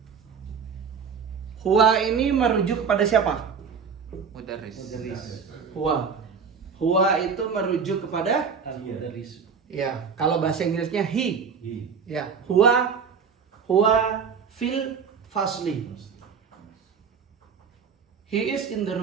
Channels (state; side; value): quieter; left; 6.2 dB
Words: Huwa ini merujuk kepada siapa? Mudarris. Huwa. Huwa itu merujuk kepada ya, kalau bahasa Inggrisnya he. Ya, huwa fil fasli. He is in the